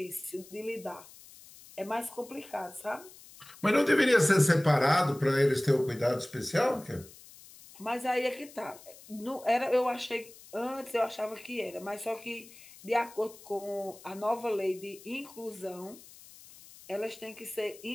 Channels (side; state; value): left; noise; hiss, 20 dB below the sound